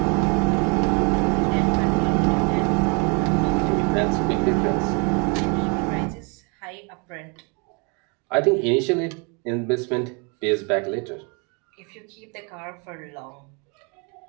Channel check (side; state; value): left; quieter; 33.1 dB